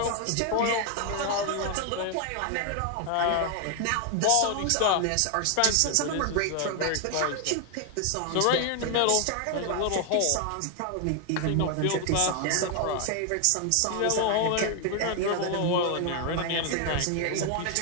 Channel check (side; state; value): both; different; correlation 0.01